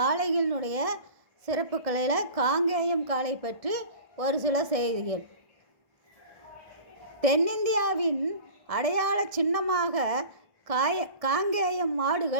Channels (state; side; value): late; left; 1.6 ms